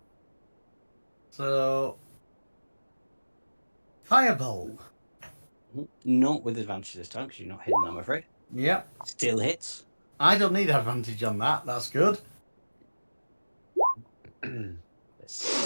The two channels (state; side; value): inverted; both; correlation -1.00